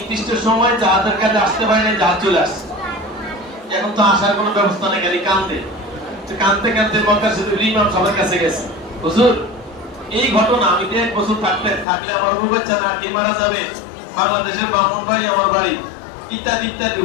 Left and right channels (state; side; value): drops out; right; at 11.9 s